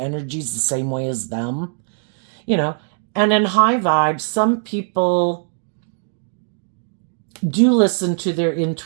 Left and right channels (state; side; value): silent; left; 57 dB below the other